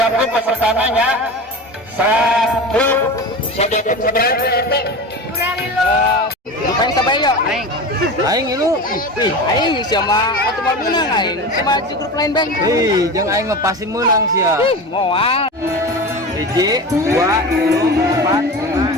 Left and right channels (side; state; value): both; normal; correlation 0.29